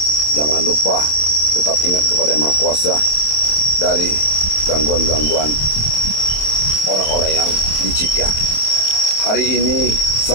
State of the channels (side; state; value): right; late; 27 ms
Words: jangan lupa tetap ingat kepada Yang Maha Kuasa dari gangguan-gangguan orang-orang yang licik ya. Hari ini